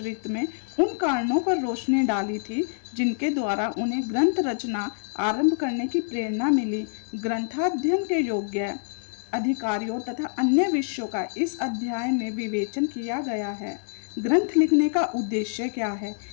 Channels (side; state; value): right; silent; digital silence